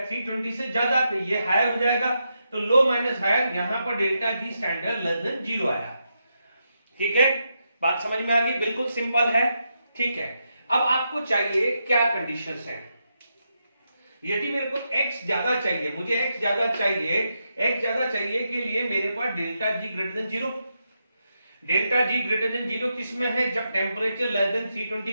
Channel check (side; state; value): both; inverted; correlation -0.84